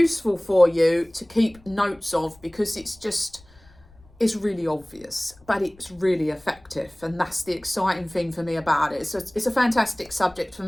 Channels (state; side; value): noise; left; rumble, 27 dB below the sound